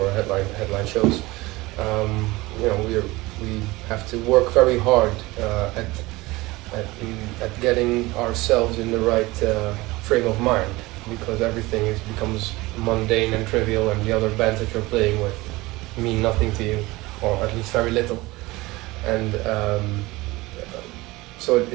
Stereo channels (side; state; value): left; quieter; 20.9 dB